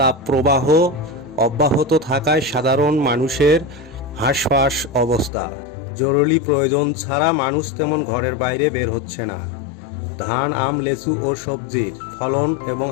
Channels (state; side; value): drops out; right; at 5.3 s